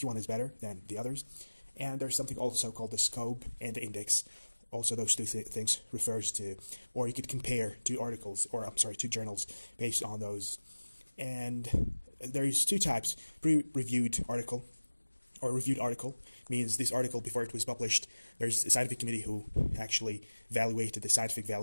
is better than the others. And there's something also called the scope and the index. Also, those two things refers to, or you could compare two articles, or I'm sorry, two journals based on those. And there's two types: pre-reviewed article, or reviewed article means this article before it was published, there's a scientific committee who actually evaluated the scientific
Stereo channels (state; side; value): inverted; both; correlation -1.00